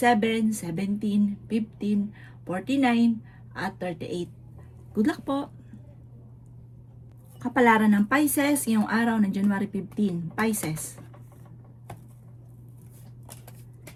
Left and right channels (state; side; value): identical; both; correlation 1.00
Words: 17, 15, 49 at 38. Good luck po! Kapalaran ng Pisces ngayong araw ng January 15. Pisces.